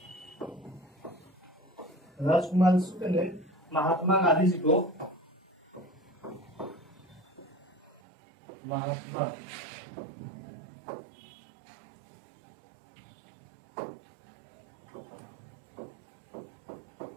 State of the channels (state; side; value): drops out; left; at 8.0 s